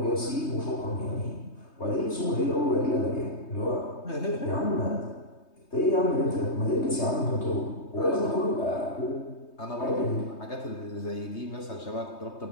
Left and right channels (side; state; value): right; late; 3.2 ms